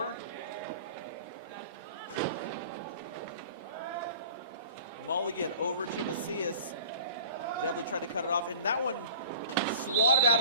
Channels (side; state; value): both; inverted; correlation -0.42